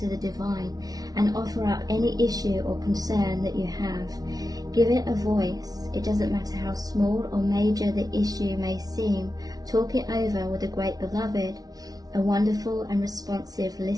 the divine and offer up any issue or concern that you have. Give it a voice. It doesn't matter how small or major the issue may seem. Talk it over with a great beloved, a wonderful and responsive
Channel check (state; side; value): late; left; 0.18 ms